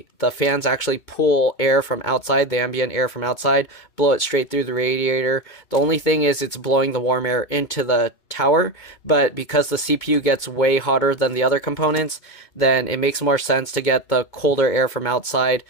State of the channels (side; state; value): right; late; 2.2 ms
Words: the fans actually pull air from outside, the ambient air from outside, blow it straight through the radiator. The only thing is it's blowing the warm air into the tower, but because the CPU gets way hotter than the other components, then it makes more sense to get the colder air from outside